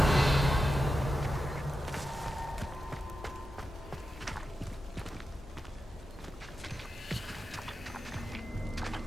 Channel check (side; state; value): both; normal; correlation 0.90